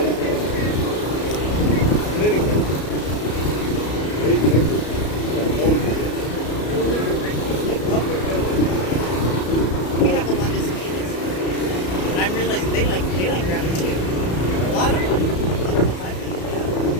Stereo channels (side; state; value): right; late; 33 ms